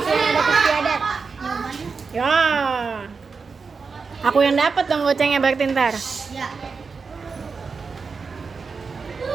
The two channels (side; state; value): left; quieter; 5.0 dB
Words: adat istiadat. Ya. Aku yang dapat dong gocengnya berarti ntar. Ya.